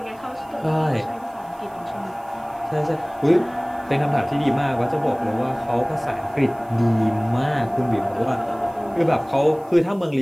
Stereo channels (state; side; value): noise; right; hiss, 29 dB below the sound